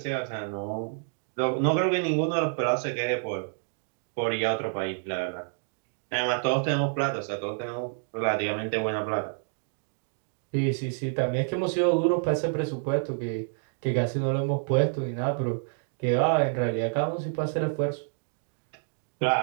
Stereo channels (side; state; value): left; silent; digital silence